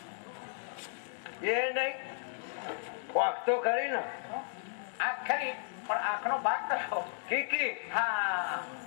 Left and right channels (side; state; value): right; silent; digital silence